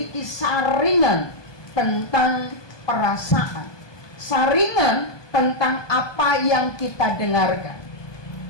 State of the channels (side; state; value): right; late; 1.2 ms